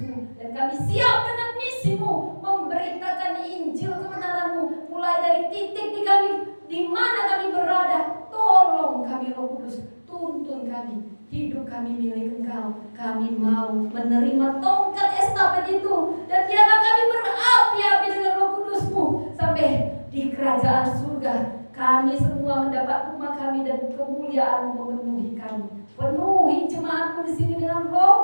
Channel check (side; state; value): both; inverted; correlation -1.00